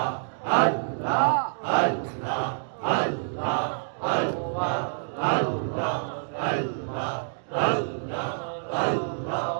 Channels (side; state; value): left; silent; digital silence